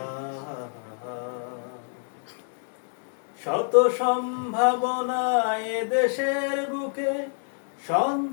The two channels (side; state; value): right; silent; 60 dB below the other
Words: শত সম্ভাবনায় দেশের বুকে,